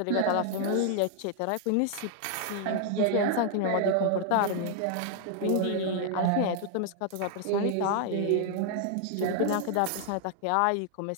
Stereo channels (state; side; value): different; both; correlation 0.00